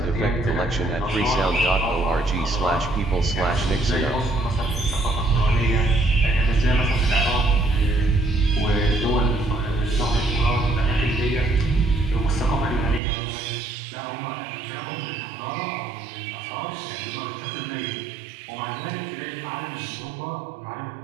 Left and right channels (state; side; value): drops out; left; at 13.0 s